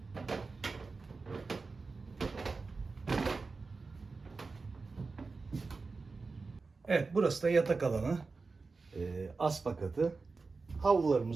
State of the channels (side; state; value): left; quieter; 4.1 dB